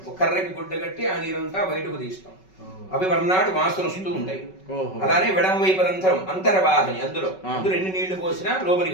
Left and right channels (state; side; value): late; right; 5.3 ms